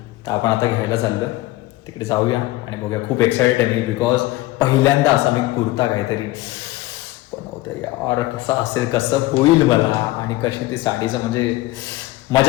तर आपण आता घ्यायला चाललो आहे, तिकडे जाऊया आणि बघूया. खूप एक्सायटेड आहे मी बिकॉज पहिल्यांदा असा मी कुर्ता काहीतरी बनवते यार. कसा असेल, कसं होईल मला आणि कशी ती साडीचं म्हणजे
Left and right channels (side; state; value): right; quieter; 18.3 dB